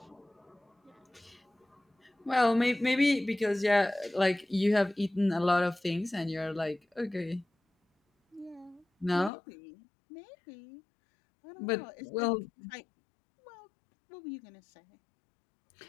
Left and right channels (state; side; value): drops out; right; at 9.3 s